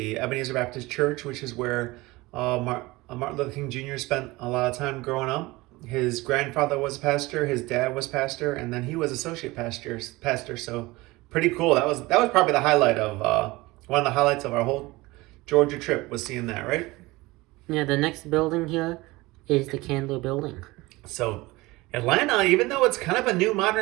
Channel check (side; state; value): left; quieter; 21.1 dB